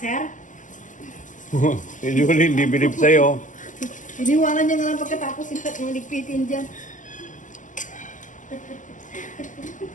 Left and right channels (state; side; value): late; right; 0.37 ms